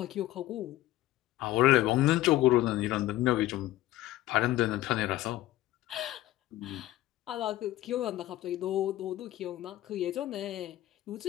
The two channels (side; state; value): right; quieter; 15.5 dB